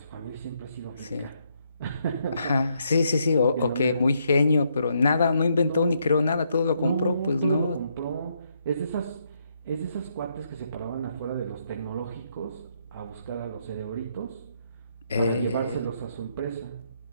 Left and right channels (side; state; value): both; inverted; correlation -0.75